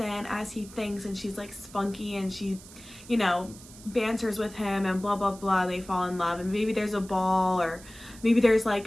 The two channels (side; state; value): right; noise; hiss, 19 dB below the sound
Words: as he thinks, and she's like spunky, and she banters with him and blah blah blah, they fall in love, and maybe there's a ball, or maybe there's like